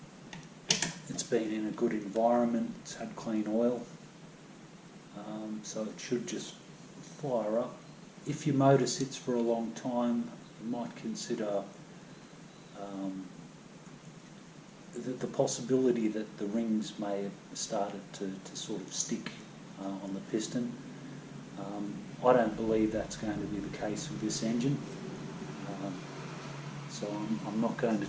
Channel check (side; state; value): both; identical; correlation 1.00